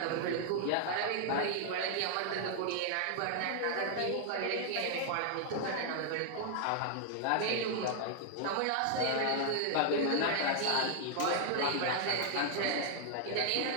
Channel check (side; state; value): both; different; correlation 0.00